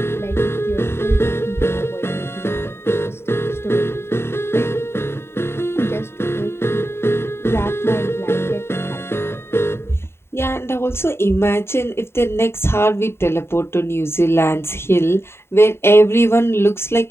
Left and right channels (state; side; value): late; right; 0.12 ms